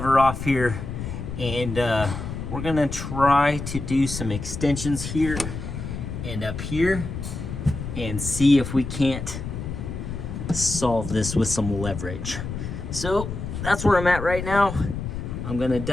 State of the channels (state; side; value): noise; left; rumble, 6 dB below the sound